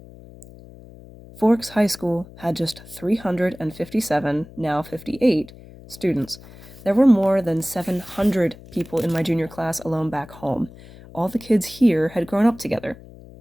Forks High School had just 357, now 58, students. There were more than 700 people in my junior class alone back home. All the kids here had grown up together.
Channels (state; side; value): noise; left; hum, 19 dB below the sound